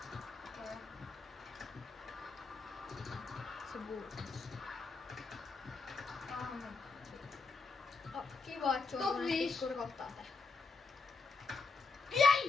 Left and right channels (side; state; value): right; quieter; 4.3 dB